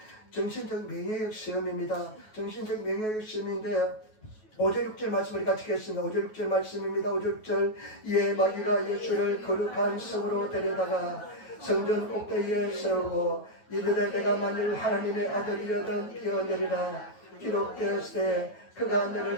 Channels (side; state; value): right; late; 9.3 ms